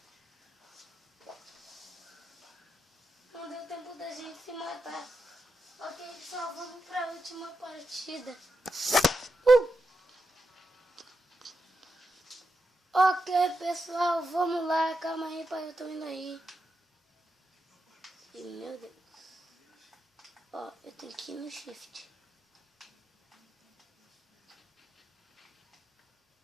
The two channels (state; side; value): normal; both; correlation 0.87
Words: Não deu tempo da gente se matar. Ok, pessoal, vamos pra última partida. Ok, pessoal, vamos lá. Calma aí, pai, eu tô indo aí. E, meu Deus. Ó, eu tenho que ir no shift.